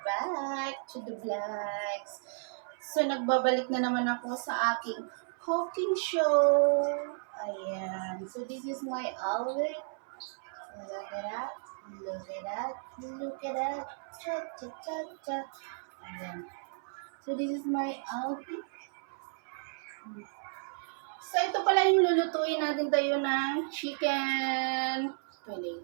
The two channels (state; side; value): silent; left; 56 dB below the other